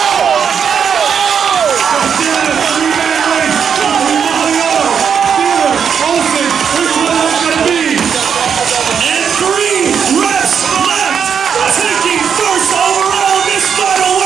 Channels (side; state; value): left; quieter; 7.2 dB